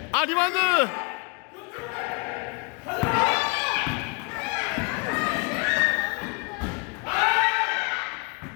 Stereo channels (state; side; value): quieter; right; 32.2 dB